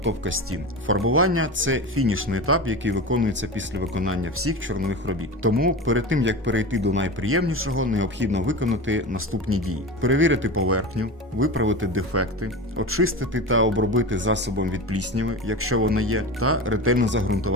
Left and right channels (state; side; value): normal; both; correlation 0.27